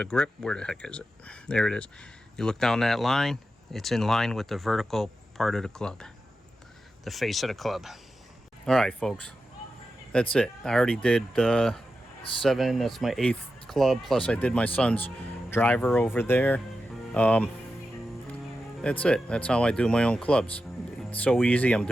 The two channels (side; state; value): both; normal; correlation 0.90